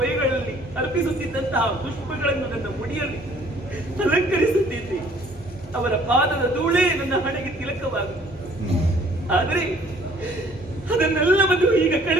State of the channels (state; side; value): normal; both; correlation 0.57